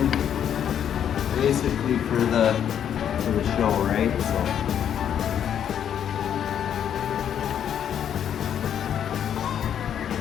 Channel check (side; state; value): right; quieter; 9.2 dB